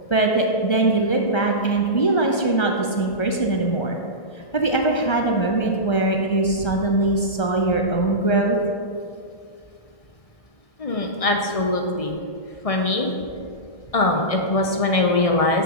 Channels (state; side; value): late; right; 1.3 ms